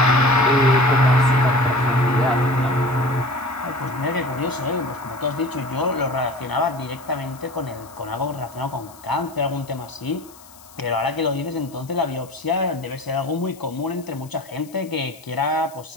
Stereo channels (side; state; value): left; noise; hiss, 22 dB below the sound